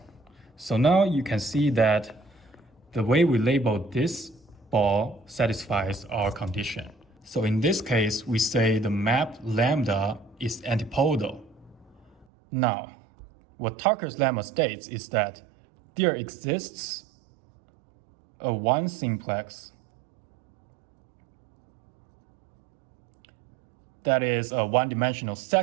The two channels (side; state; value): left; drops out; at 12.2 s